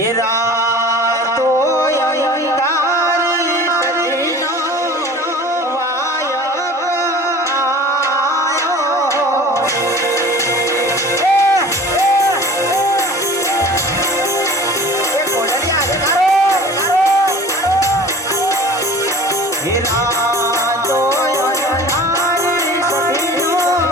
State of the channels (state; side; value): normal; both; correlation 0.43